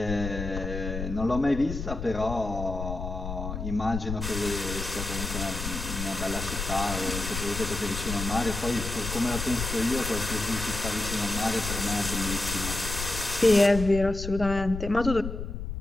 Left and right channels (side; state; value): left; noise; rumble, 6 dB below the sound